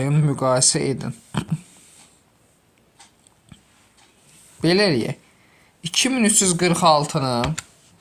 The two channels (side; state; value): both; identical; correlation 1.00